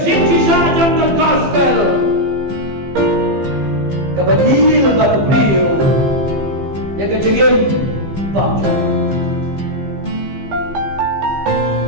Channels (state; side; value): late; left; 15 ms